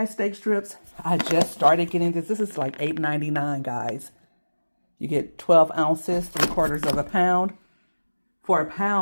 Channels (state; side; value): inverted; both; correlation -1.00